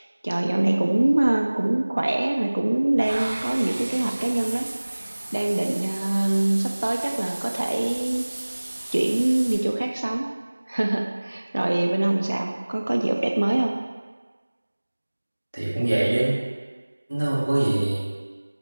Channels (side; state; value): both; inverted; correlation -1.00